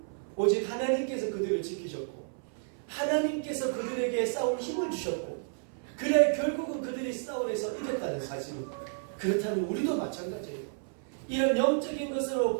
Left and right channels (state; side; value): silent; left; 57 dB below the other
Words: 오직 하나님께서 그들을 지키셨고 하나님께서 그들에게 싸울 힘을 주셨고, 그래 결국은 그들이 싸울에서 이겼다는 사실. 그렇다면 우리도 마찬가지예요. 이런 영적인